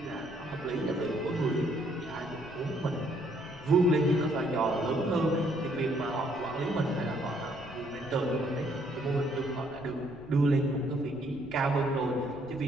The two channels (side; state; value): left; noise; rumble, 20 dB below the sound